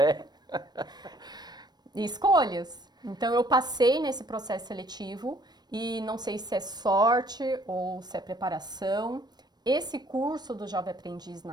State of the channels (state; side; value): late; left; 0.20 ms